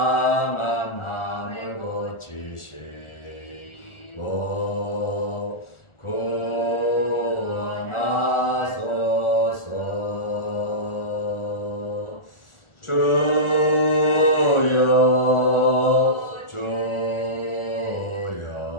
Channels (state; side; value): late; right; 1.4 ms